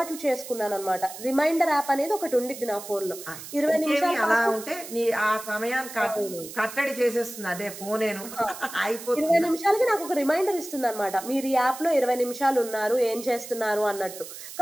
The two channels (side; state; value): right; noise; hiss, 13 dB below the sound